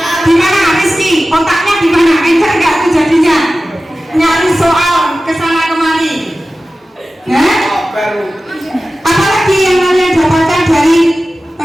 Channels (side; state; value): both; normal; correlation 0.95